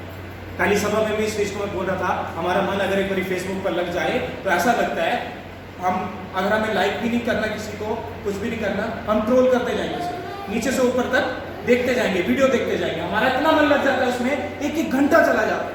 पहली सभा में भी इस चीज को मैं बोल रहा था, हमारा मन अगर एक बार फेसबुक पर लग जाए तो ऐसा लगता है हम, अगर हमें लाइक भी नहीं करना किसी को, कुछ भी नहीं करना, हम ट्रोल करते जाएंगे, नीचे से ऊपर तक देखते जाएंगे, वीडियो देखते जाएंगे, हमारा इतना मन लग जाता है उसमें, एक घंटा चला जाता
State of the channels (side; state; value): both; identical; correlation 1.00